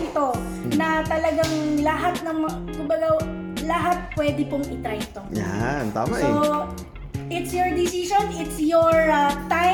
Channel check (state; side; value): identical; both; correlation 1.00